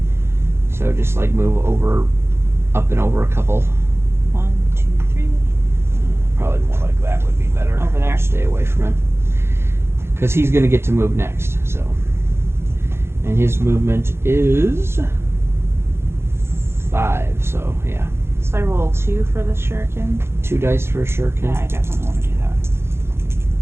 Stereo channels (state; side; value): late; left; 0.12 ms